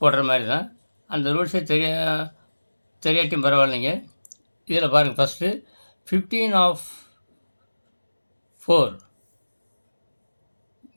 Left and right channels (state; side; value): inverted; both; correlation -1.00